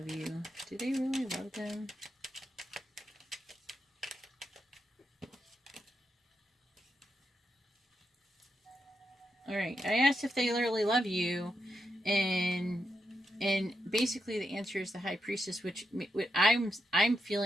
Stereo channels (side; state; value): both; normal; correlation 0.84